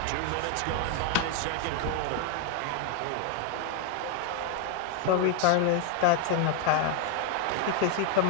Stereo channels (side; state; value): both; different; correlation 0.01